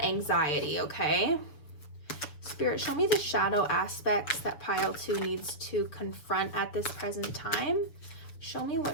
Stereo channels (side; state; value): right; late; 6.9 ms